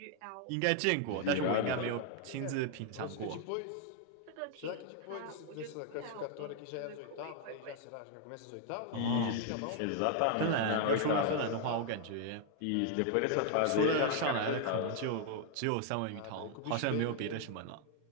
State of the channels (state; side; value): different; both; correlation 0.00